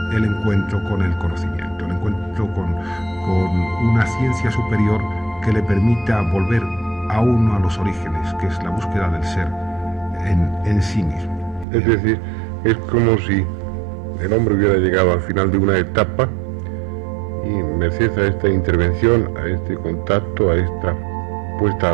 el encuentro con el conocimiento, el encuentro con una ciencia superior que le permita volver a uno a los orígenes, que es la búsqueda del ser en sí mismo. Es decir, es como si el hombre hubiera llegado al final de una etapa y merced a esta intervención, a este contacto, a esta puesta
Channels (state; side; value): drops out; left; at 11.7 s